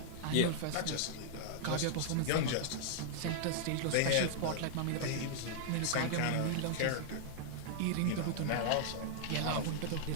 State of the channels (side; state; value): both; different; correlation -0.01